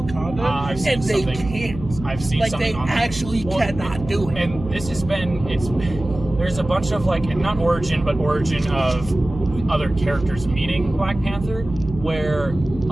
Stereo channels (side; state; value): right; noise; hum, 12 dB below the sound